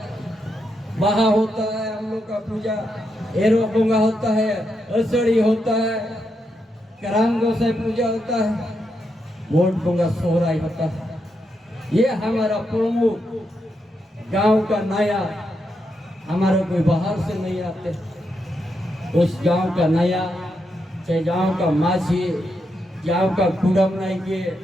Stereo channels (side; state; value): both; normal; correlation 0.83